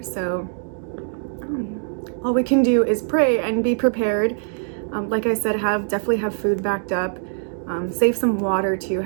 So all we can do is pray and be prepared. Like I said, definitely have food backed up. Save some water too.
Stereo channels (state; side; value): silent; left; digital silence